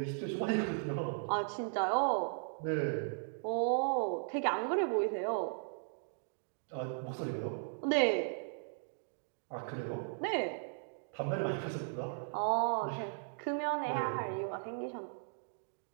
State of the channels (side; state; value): left; silent; digital silence